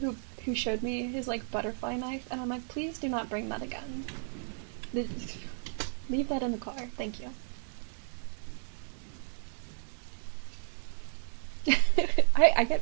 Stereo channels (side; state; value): left; silent; digital silence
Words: who showed me his, like, butterfly knife, and I'm like, please do not bring that again. Leave that in the car. Thank you.